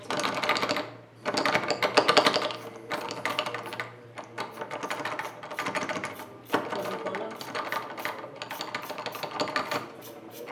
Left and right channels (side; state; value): both; identical; correlation 1.00